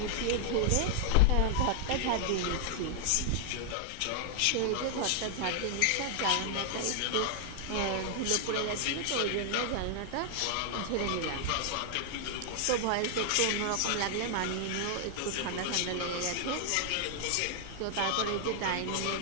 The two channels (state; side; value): different; both; correlation 0.00